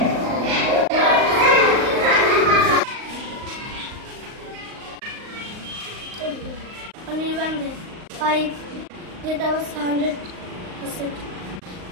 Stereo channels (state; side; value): late; left; 38 ms